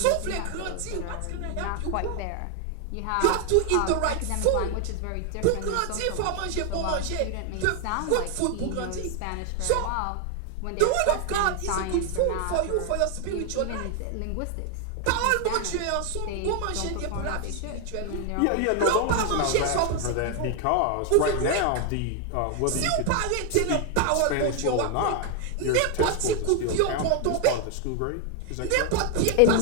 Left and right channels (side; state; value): both; different; correlation 0.00